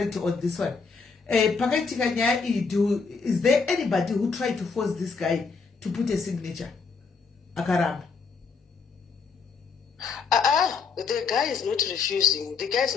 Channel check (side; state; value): right; quieter; 5.0 dB